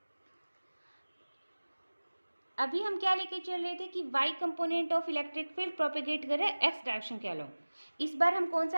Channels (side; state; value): both; inverted; correlation -1.00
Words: अभी हम क्या लेके चल रहे थे कि y component of electric field propagate कर रहा है एक्स डायरेक्शन के अलोंग। इस बार हम कौन